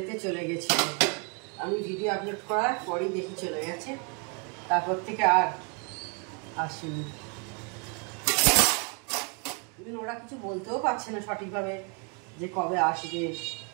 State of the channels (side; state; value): left; quieter; 35.3 dB